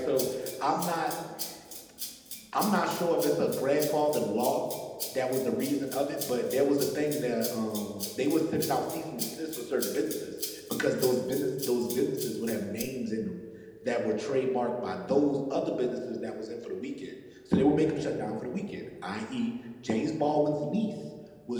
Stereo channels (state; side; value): identical; both; correlation 1.00